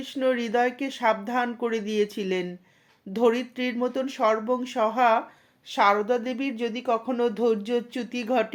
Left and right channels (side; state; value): both; identical; correlation 1.00